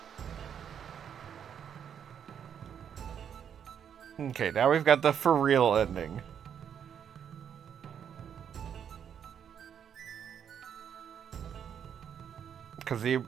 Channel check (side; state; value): left; quieter; 8.4 dB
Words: Okay, now we've got the for real ending. Because